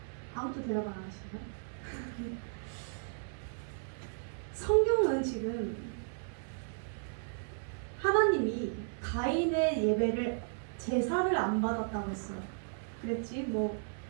아무도 대답 안 하시나요? 성경은 지금 하나님이 가인의 예배를 제사를 안 받았다고 했어요. 그랬지 뭐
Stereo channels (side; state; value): left; silent; digital silence